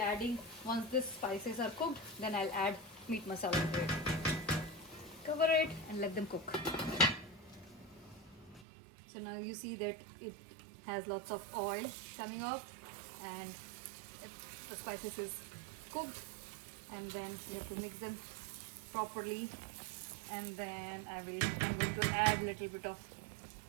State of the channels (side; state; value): left; drops out; at 8.7 s